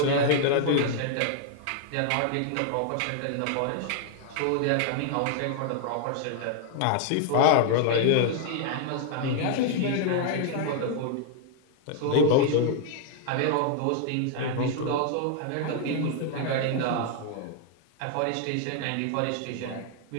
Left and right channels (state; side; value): different; both; correlation 0.00